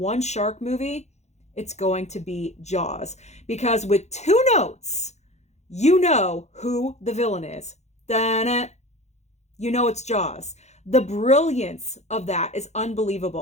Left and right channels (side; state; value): right; late; 0.33 ms